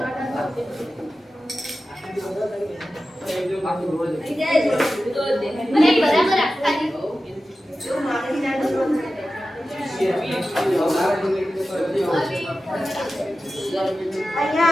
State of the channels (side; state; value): both; normal; correlation 0.94